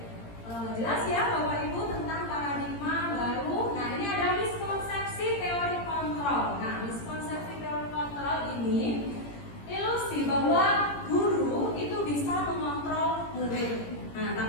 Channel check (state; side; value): late; right; 17 ms